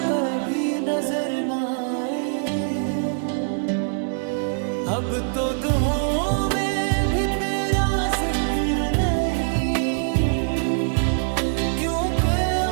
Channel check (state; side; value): silent; left; 62 dB below the other